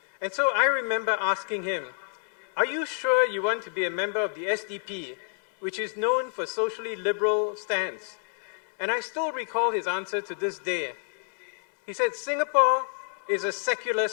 And so I remember asking him, are you sure you want to be a member of the SDP, which is known for socially liberal stance? And I still recall his answer to this day. He said, Singapore is a secular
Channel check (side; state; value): right; silent; 59 dB below the other